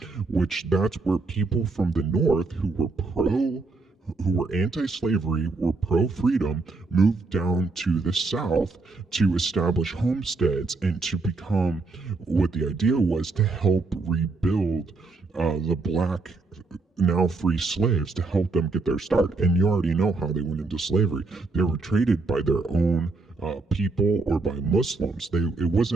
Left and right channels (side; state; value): left; quieter; 3.7 dB